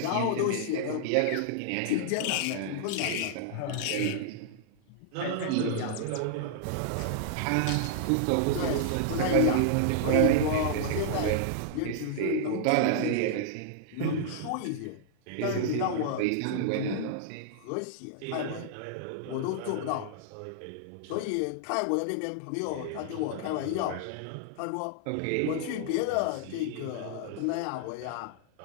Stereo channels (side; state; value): both; different; correlation -0.01